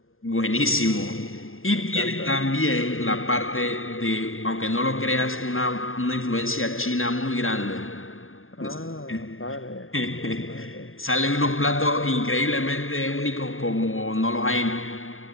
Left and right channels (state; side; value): late; right; 0.61 ms